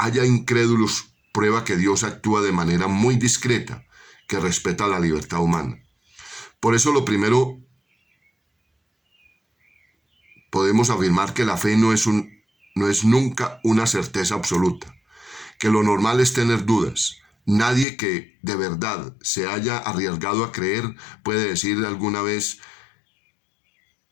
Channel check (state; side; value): drops out; right; at 17.9 s